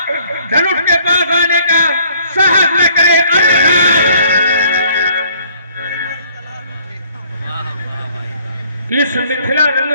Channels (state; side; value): inverted; both; correlation -0.60